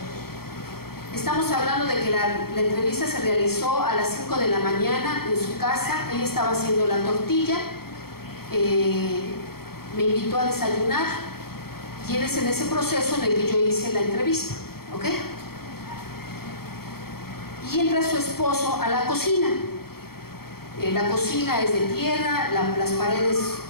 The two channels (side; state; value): right; late; 0.94 ms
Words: Estamos hablando de que la entrevista se realizó a las 5 de la mañana en su casa. Ella estaba haciendo la tortilla, me invitó a desayunar y es en ese proceso en el que yo hice la entrevista, ¿ok? Y entra su esposo a la cocina. La cocina es de tierra, las paredes